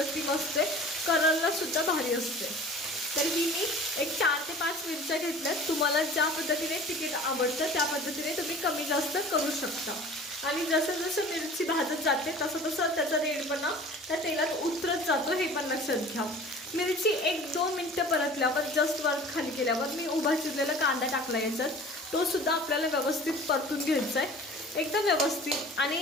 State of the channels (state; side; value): normal; both; correlation 0.44